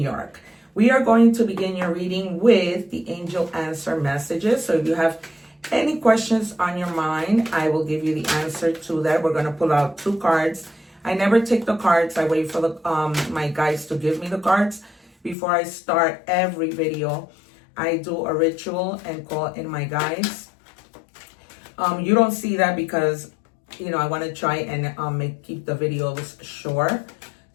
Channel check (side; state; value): right; drops out; at 15.4 s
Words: York. We are going to begin your reading with the angel answer messages. So if you have any questions on your mind, I will give you the answer to that. We're going to pull out 2 cards. I never take the cards. I wait for the my guides to give me the cards before I start every video. I do a ritual and call in my guides. You don't see that because, you know, I want to try and keep the videos short